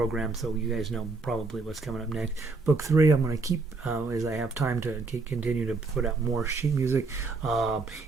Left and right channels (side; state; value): left; quieter; 3.9 dB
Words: so you guys know probably what's coming up next. Book 3, I'm going to keep as I have time to continue to put out more sheet music,